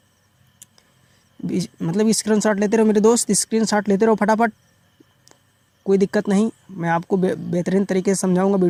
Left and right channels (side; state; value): both; identical; correlation 1.00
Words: मतलब स्क्रीनशॉट लेते रहो मेरे दोस्त, स्क्रीनशॉट लेते रहो फटाफट, कोई दिक्कत नहीं। मैं आपको बेहतरीन तरीके से समझाऊंगा।